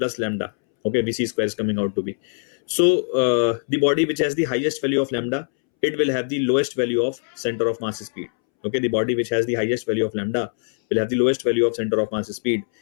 lambda. Okay, vc square is coming out to be. So the body which has the highest value of lambda, it will have the lowest value of center of mass speed. Okay, the body which has the highest value of lambda will have the lowest value of center of mass speed.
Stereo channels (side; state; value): right; silent; 64 dB below the other